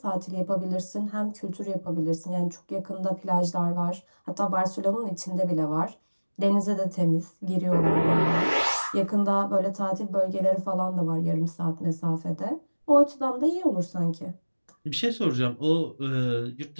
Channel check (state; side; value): inverted; both; correlation -1.00